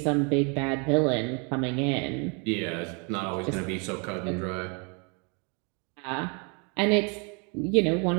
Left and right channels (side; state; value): left; quieter; 34.7 dB